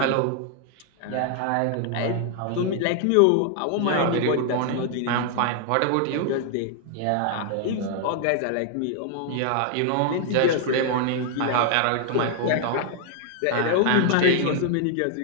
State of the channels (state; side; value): different; both; correlation 0.00